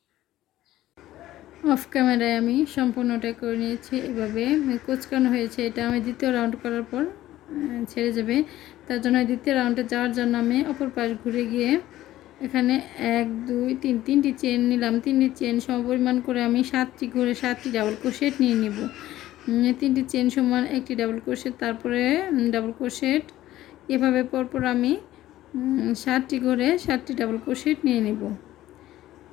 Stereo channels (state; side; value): quieter; right; 14.6 dB